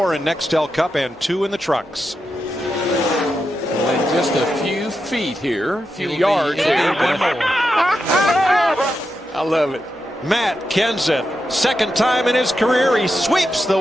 in Nextel Cup, and 2 in the trucks. And just a few feet here, a few yards here. I love it. Matt Kenseth, second time in his career, he sweeps the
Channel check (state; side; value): normal; both; correlation 0.87